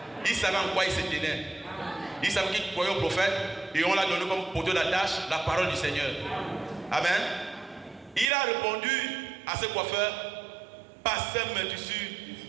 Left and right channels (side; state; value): left; drops out; at 8.3 s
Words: Il savait en quoi il se tenait. Il savait qu'il croyait au prophète et on l'a donné comme poteau d'attache la parole du Seigneur. Amen. Il a répondu à ce coiffeur, pasteur mes tissus,